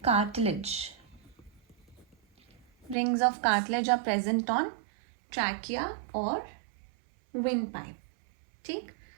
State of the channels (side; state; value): left; drops out; at 3.0 s